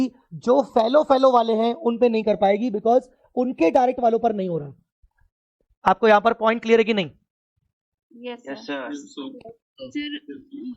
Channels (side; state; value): both; identical; correlation 1.00